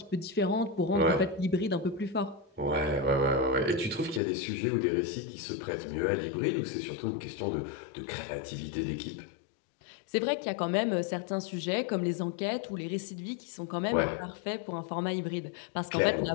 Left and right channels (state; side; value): drops out; right; at 4.2 s